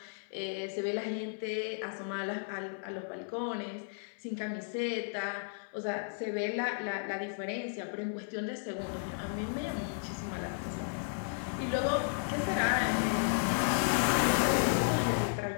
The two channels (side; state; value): right; silent; 55 dB below the other